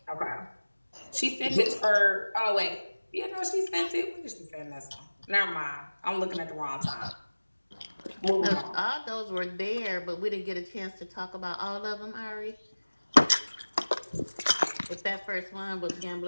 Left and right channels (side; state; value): both; inverted; correlation -1.00